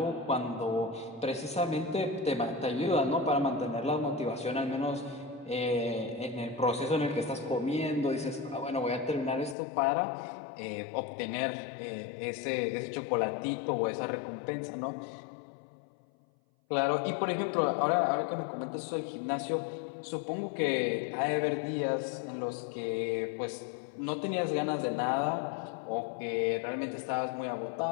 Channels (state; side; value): drops out; right; at 9.6 s